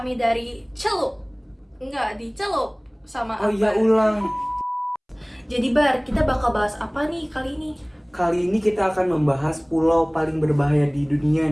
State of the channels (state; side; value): identical; both; correlation 1.00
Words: dari Celup. Enggak, di Celup sama Oh iya, Akbar. ulang. Jadi Bar, kita bakal bahas apa nih kali ini? Kali ini kita akan membahas pulau paling berbahaya di dunia